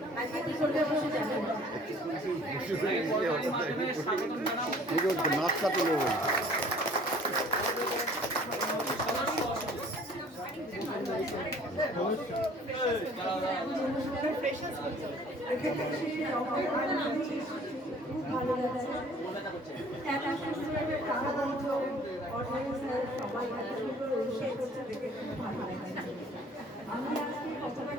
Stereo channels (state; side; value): normal; both; correlation 0.53